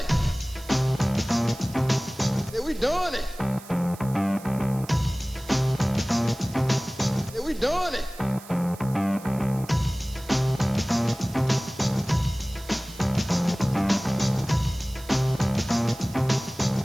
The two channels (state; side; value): noise; right; hiss, 19 dB below the sound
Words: Yeah, we doing it. Yeah, we doing it.